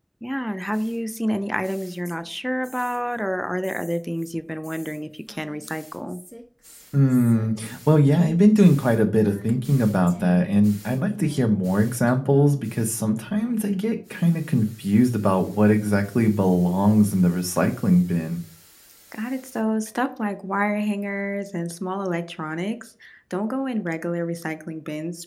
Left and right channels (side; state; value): both; identical; correlation 1.00